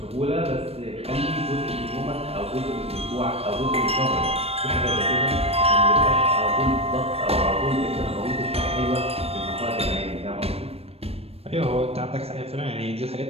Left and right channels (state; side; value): late; left; 0.29 ms